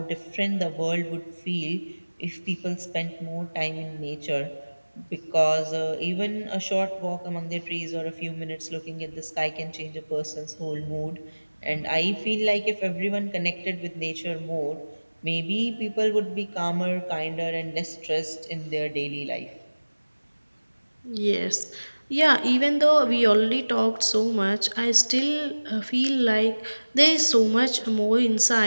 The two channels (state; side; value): inverted; both; correlation -1.00